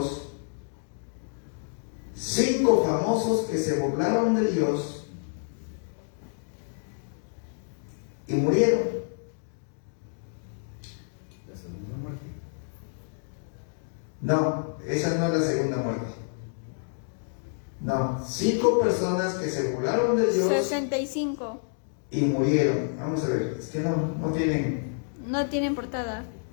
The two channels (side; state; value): right; silent; digital silence